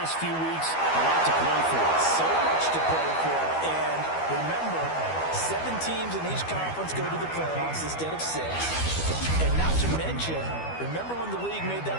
few weeks, a lot to play for. So much to play for. And remember, 7 teams in each conference go to the playoffs instead of 6. And not to mention, remember when the league made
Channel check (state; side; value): late; right; 12 ms